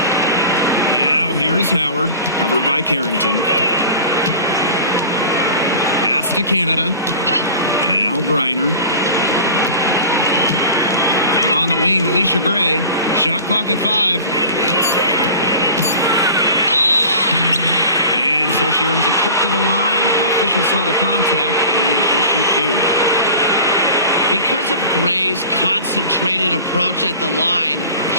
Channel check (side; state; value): both; inverted; correlation -0.38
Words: Now here's Howard, covered by Carrington. Pass to Canada. Now Griner. On the wing, Alicia Gray. Shot clock at 5. And so she earns a trip to the line. Official saw the contact, and she'll shoot 2. Because of Gray's concentrated approach at the line,